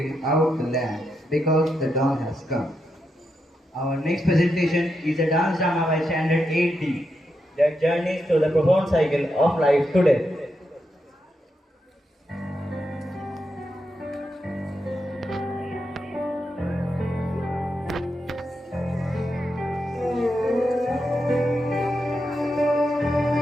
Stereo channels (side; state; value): both; normal; correlation 0.84